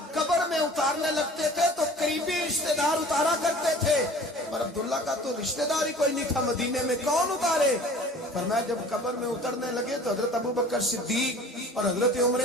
قبر میں اتارنے لگتے تھے تو قریبی رشتہ دار اتارا کرتے تھے, اور عبداللہ کا تو رشتہ دار ہی کوئی نہیں تھا مدینے میں, کون اتارے؟ فرمایا جب قبر میں اترنے لگے تو حضرت ابو بکر صدیق اور حضرت عمر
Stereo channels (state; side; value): normal; both; correlation 0.45